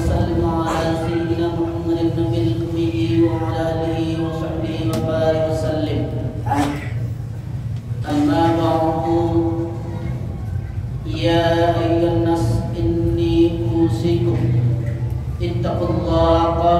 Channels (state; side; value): identical; both; correlation 1.00